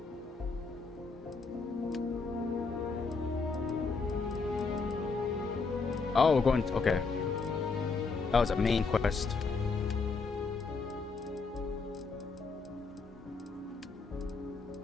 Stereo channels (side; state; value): right; quieter; 4.4 dB